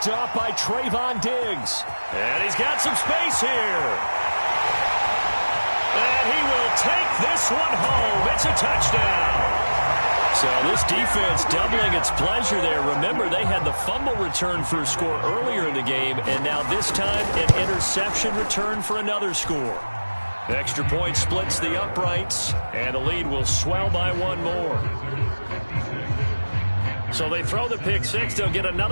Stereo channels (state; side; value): inverted; both; correlation -1.00